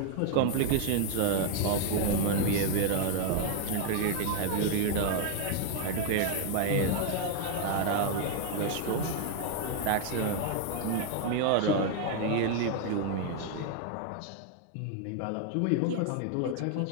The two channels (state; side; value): different; both; correlation 0.00